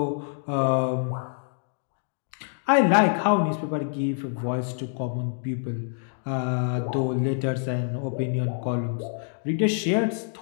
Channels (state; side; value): silent; right; digital silence